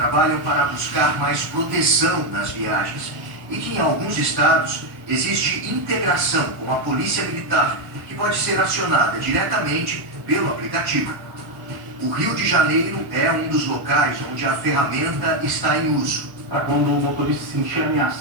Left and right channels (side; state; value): left; late; 1.1 ms